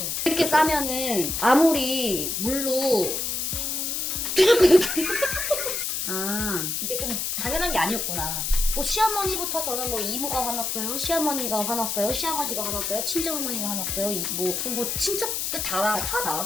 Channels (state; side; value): noise; left; hiss, 1 dB below the sound